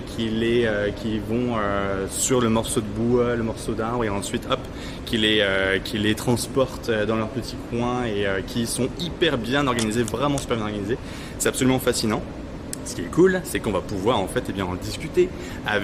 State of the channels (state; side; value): identical; both; correlation 1.00